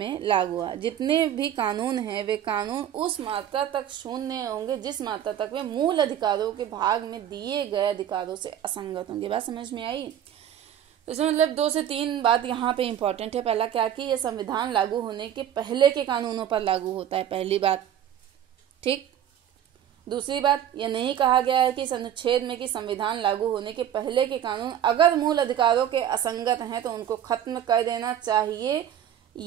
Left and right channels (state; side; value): quieter; left; 10.2 dB